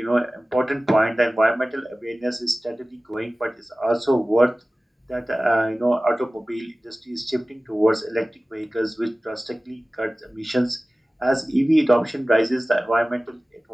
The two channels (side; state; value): both; normal; correlation 0.97